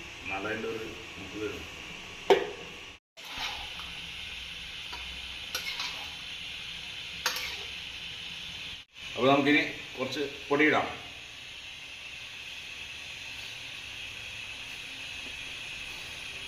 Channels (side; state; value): both; identical; correlation 1.00